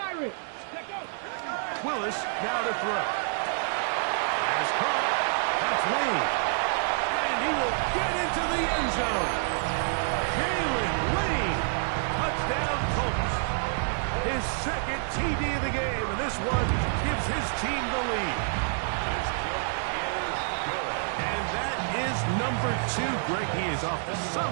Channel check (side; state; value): left; silent; digital silence